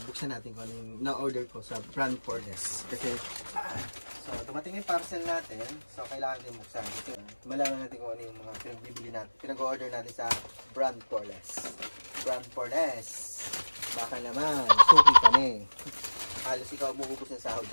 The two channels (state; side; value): inverted; both; correlation -1.00